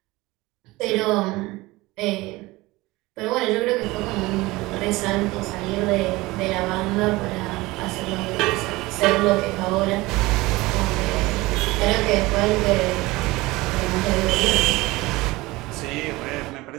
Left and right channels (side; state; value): left; quieter; 20.7 dB